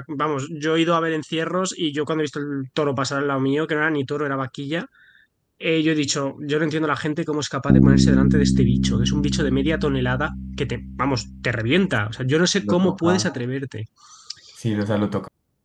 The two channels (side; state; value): both; identical; correlation 1.00